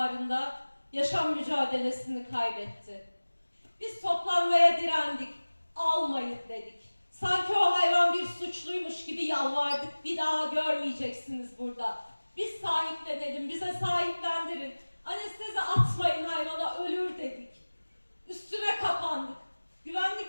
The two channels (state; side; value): inverted; both; correlation -1.00